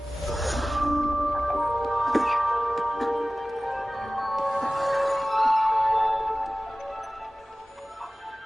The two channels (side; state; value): both; normal; correlation 0.97